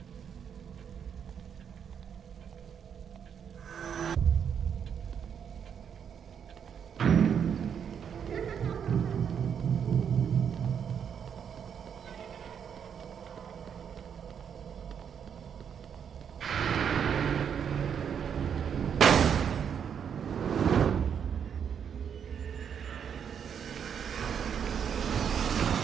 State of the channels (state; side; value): quieter; left; 7.8 dB